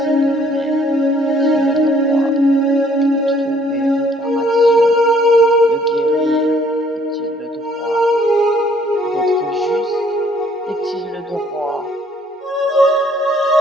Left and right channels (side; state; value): both; normal; correlation 0.62